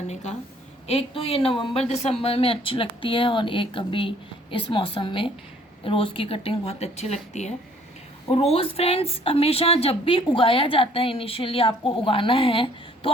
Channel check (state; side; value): normal; both; correlation 0.59